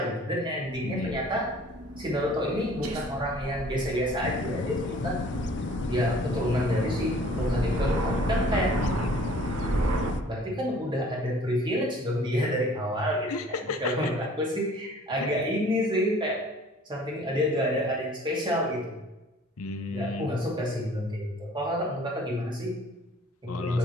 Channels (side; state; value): both; normal; correlation 0.52